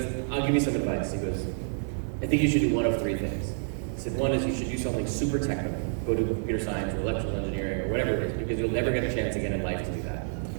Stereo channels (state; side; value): silent; left; digital silence